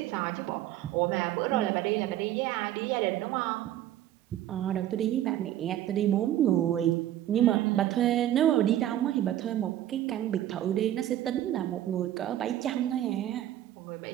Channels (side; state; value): left; quieter; 12.6 dB